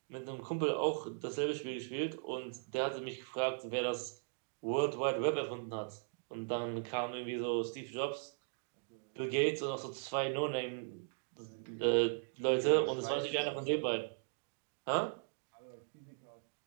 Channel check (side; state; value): left; silent; digital silence